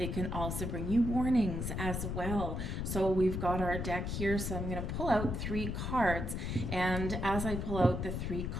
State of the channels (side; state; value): left; noise; rumble, 3 dB below the sound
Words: can also bring you warnings as well. So we've got our deck here, so I'm going to pull out 3 cards, and as I pull out the 3